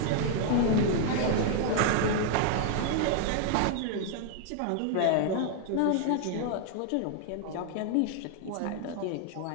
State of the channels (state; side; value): different; both; correlation 0.00